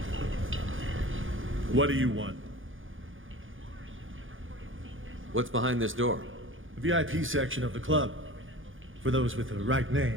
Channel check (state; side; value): late; left; 0.58 ms